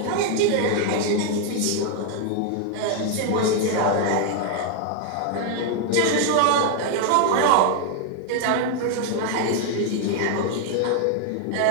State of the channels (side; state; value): both; different; correlation 0.00